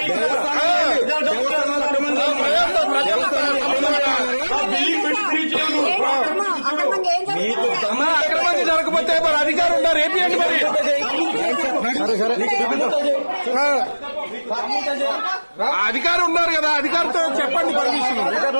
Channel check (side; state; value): both; inverted; correlation -1.00